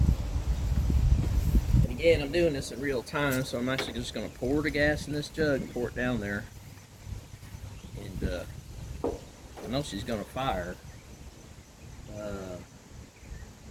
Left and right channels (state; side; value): identical; both; correlation 1.00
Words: Again, I'm doing this in real time, so I'm actually just going to pour the gas in this jug and pour it down there. And I know she's going to fire. I